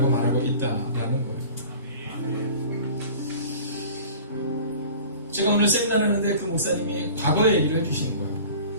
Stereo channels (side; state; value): both; inverted; correlation -0.42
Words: 말하고 있다라는 거예요. 제가 오늘 세미나를 하는데 그 목사님이 과거의 얘기를 해주시는 거예요.